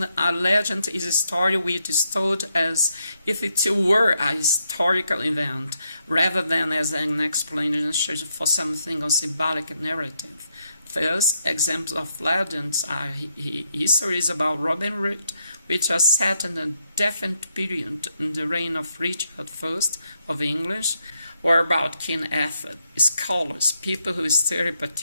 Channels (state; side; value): inverted; both; correlation -0.79